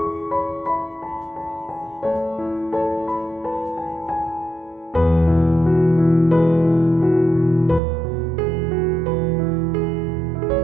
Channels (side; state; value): left; drops out; at 7.8 s